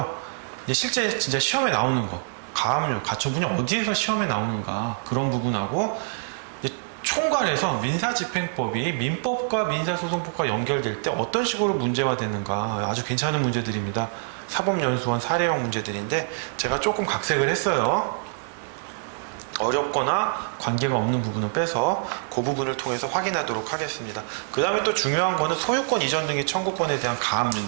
이제 실제 진짜 시험에 나오는 거, 가압류, 가처분이 어디에서 시험에 나오는가 그런 부분하고 총괄해서 민사집행법이 민법과 민사소송법과 연결될 때 어떤 식으로 문제화되는가 아주 괜찮은 문제들입니다. 사법연수원 사례형 문제들인데 제가 조금 각색을 했어요. 어렵거나 관계가 없는 부분은 빼서 그 부분을 통해서 확인하도록 하겠습니다. 그 다음에 또 중요한 거는 소유권 이전 등의 청구권에 대한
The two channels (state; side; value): silent; left; digital silence